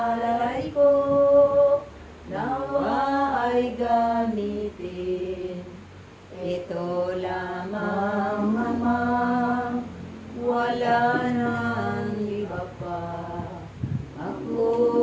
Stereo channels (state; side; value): identical; both; correlation 1.00